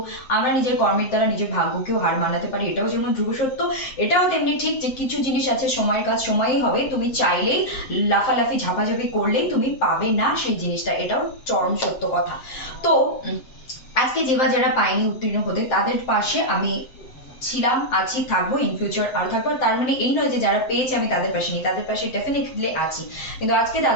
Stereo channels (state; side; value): late; right; 7.8 ms